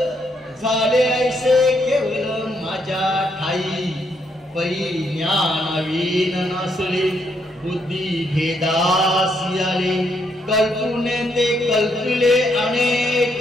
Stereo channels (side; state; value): both; normal; correlation 0.75